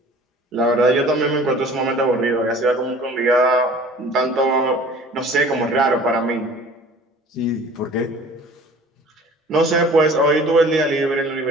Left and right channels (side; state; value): both; normal; correlation 0.47